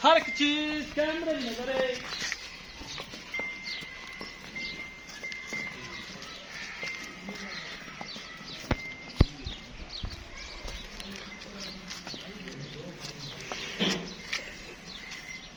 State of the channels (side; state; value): both; identical; correlation 1.00